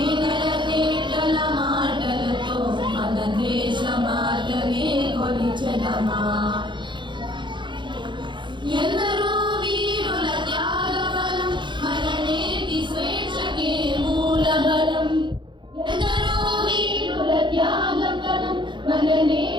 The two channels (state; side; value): late; left; 0.23 ms